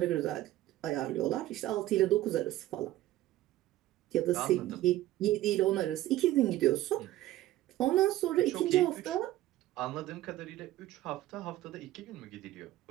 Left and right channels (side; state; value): left; quieter; 15.0 dB